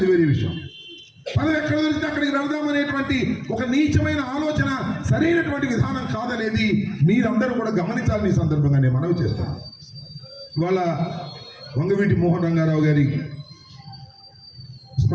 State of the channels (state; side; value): identical; both; correlation 1.00